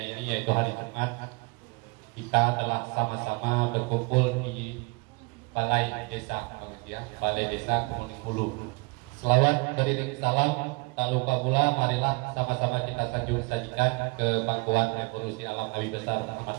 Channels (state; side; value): quieter; left; 28.2 dB